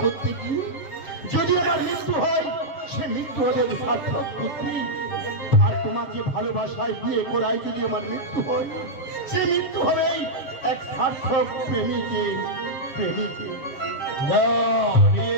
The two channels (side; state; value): right; late; 7.1 ms